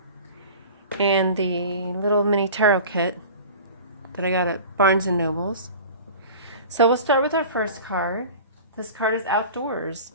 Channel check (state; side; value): inverted; both; correlation -0.38